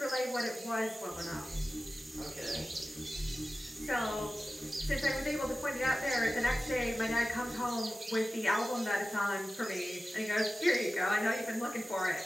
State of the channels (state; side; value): normal; both; correlation 0.95